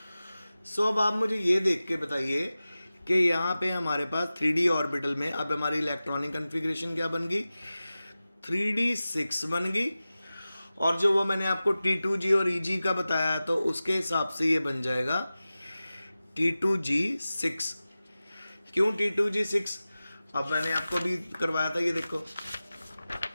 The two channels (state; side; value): inverted; both; correlation -0.96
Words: सो अब आप मुझे ये देख के बताइए कि यहाँ पे हमारे पास 3D ऑर्बिटल में अब हमारी इलेक्ट्रॉनिक कन्फिग्रेशन क्या बन गई, 3D 6 बन गई, और जो वो मैंने आपको T2G और EG का बताया तो उसके हिसाब से ये बन जाएगा T2G 6। क्यों T2G 6? अब मैंने आपको भी करवाया था, ये देखो